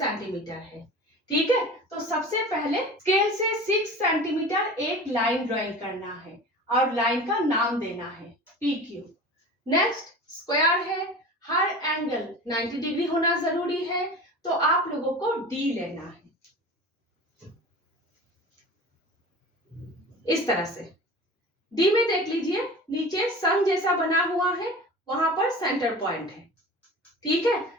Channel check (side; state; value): both; normal; correlation 0.36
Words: है। ठीक है, तो सबसे पहले स्केल से 6 सेंटीमीटर एक लाइन ड्राइंग करना है और लाइन का नाम देना है PQ। नेक्स्ट स्क्वायर है, हर एंगल 90 डिग्री होना जरूरी है, तो आप लोगों को D लेना है। इस तरह से D में देख लीजिए, नीचे सन जैसा बना हुआ है, वहां पर सेंटर पॉइंट है। ठीक